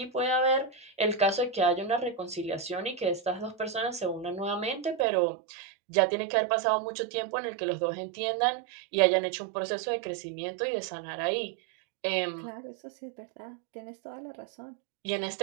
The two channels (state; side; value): drops out; left; at 5.1 s